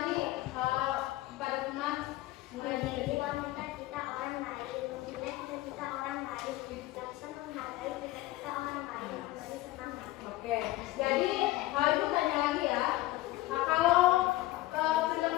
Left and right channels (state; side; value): quieter; right; 17.3 dB